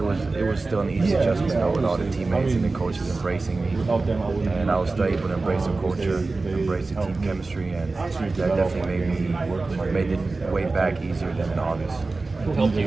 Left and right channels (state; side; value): quieter; left; 3.6 dB